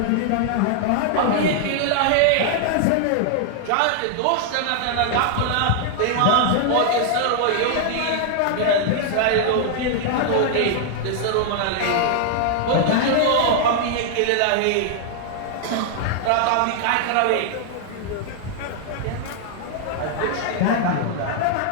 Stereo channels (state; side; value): different; both; correlation 0.00